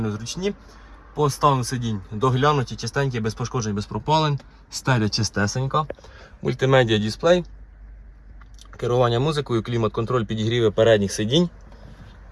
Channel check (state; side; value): identical; both; correlation 1.00